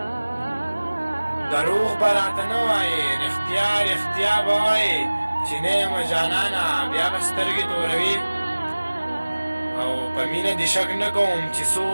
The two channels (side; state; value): both; inverted; correlation -1.00